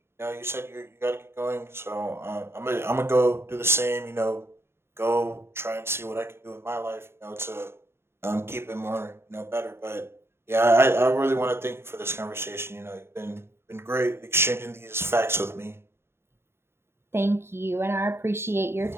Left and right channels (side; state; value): left; late; 0.12 ms